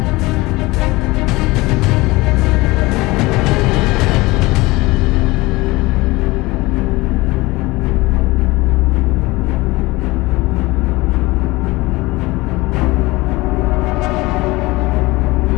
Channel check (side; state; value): right; quieter; 21.4 dB